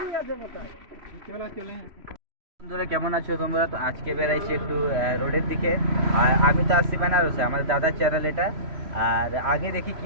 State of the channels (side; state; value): left; late; 3.0 ms